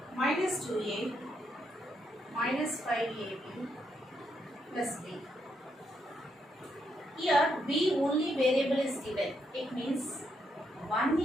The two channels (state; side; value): normal; both; correlation 0.78